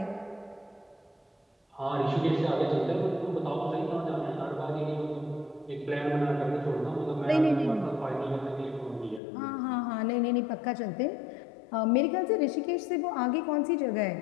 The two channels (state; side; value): drops out; right; at 9.2 s